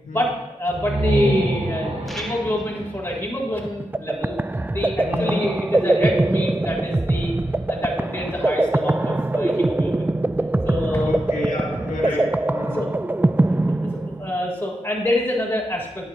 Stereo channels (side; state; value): both; normal; correlation 0.88